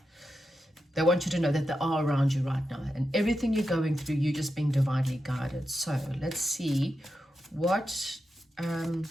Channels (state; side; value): normal; both; correlation 0.88